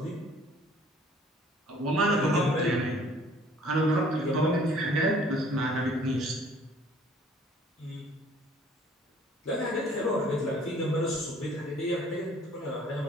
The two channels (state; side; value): normal; both; correlation 0.56